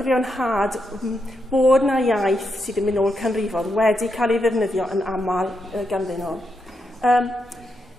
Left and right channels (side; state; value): both; normal; correlation 0.83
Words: bod yna iaith sydd yn mynd o'r canrifodd wedi cael ei ddefnyddio yn aml ganddyn nhw.